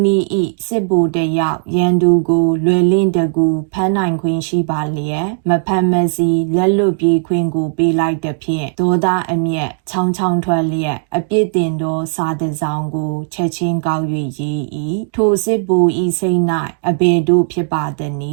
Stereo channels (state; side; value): silent; left; digital silence